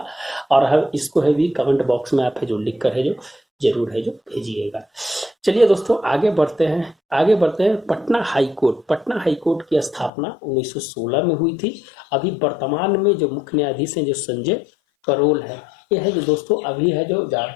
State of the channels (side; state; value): right; drops out; at 10.1 s